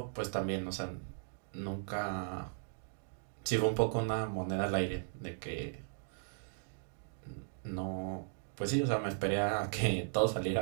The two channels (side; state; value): left; silent; digital silence